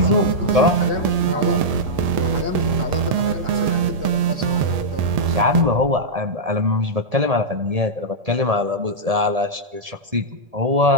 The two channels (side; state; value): left; late; 1.7 ms